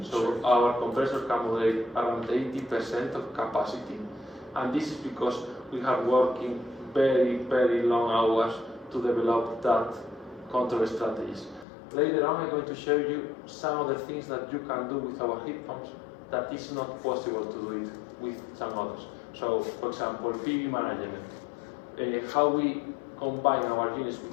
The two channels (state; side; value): drops out; right; at 11.7 s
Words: So Sure. our compressor can modulate around 80% of capacity, and this is because we have working very, very long hours to develop that control strategies. Later on, I'm going to show you some of the things that you can do with our heat pumps that is not possible to do it with some others. So, for example, PV management. How we combine our units with